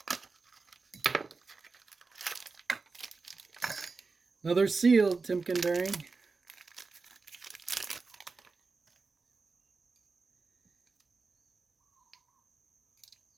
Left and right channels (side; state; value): left; quieter; 4.2 dB